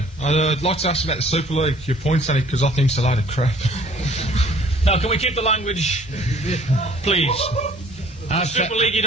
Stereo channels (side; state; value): both; normal; correlation 0.55